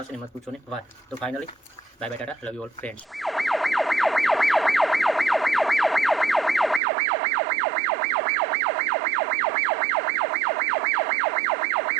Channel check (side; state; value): left; drops out; at 6.8 s